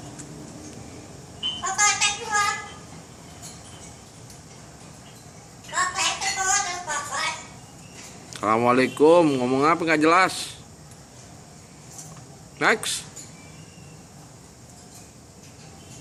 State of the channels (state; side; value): identical; both; correlation 1.00